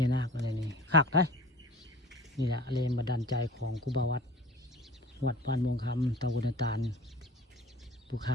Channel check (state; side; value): normal; both; correlation 0.41